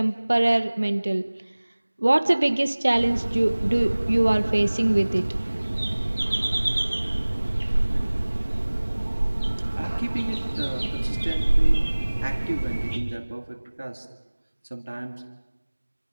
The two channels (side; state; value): both; inverted; correlation -1.00